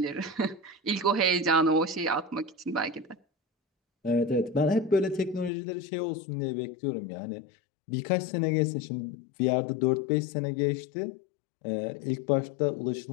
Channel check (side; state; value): right; drops out; at 5.5 s